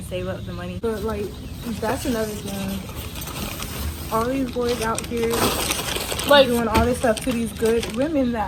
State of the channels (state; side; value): identical; both; correlation 1.00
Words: save up the money. But like, that's another thing. All these boys out here Like doing all this stuff to these good women